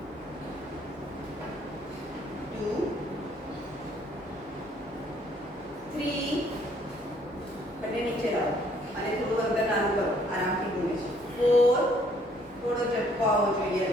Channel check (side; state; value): both; normal; correlation 0.64